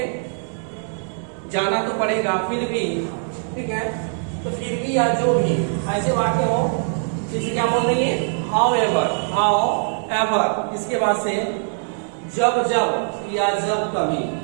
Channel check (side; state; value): left; silent; digital silence